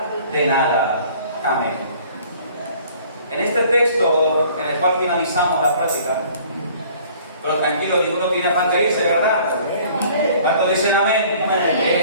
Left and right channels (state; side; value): inverted; both; correlation -0.53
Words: de nada. Amén. En este texto, en el cual finalizamos la práctica, pero tranquilo, ninguno tiene afán de irse, ¿verdad? ¿Cuántos dicen amén?